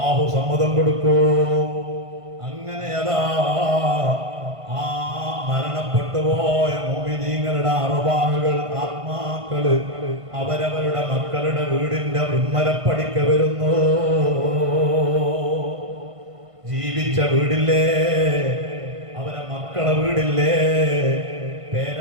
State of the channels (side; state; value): left; late; 1.5 ms